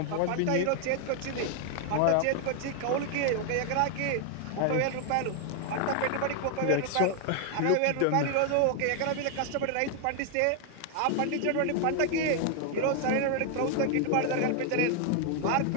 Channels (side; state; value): both; different; correlation 0.00